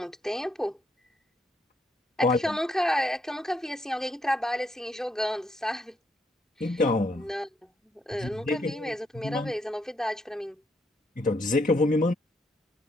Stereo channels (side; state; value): both; normal; correlation 0.75